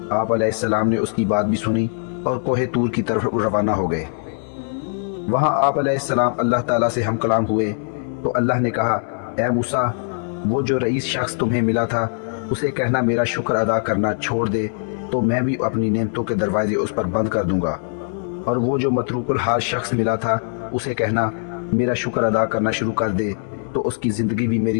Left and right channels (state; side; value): silent; right; 60 dB below the other